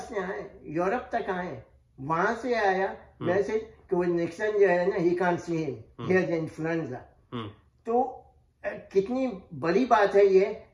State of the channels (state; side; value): identical; both; correlation 1.00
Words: आए, यूरोप तक आए, वहां से आया वैसे कि वो निक्सन जो है ना, he can't see him, he has influenza. तो कितनी बड़ी बात है ये